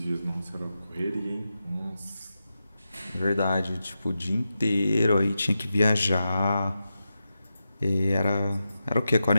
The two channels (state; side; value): inverted; both; correlation -0.90